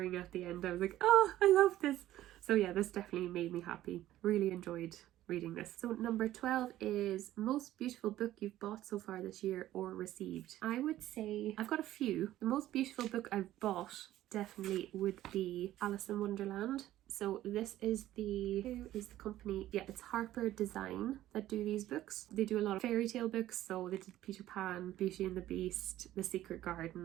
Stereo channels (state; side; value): quieter; left; 14.0 dB